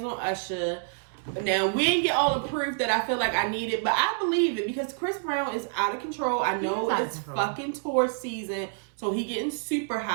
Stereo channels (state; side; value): silent; left; 60 dB below the other